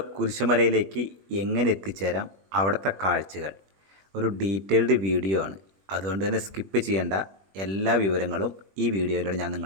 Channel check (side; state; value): left; late; 21 ms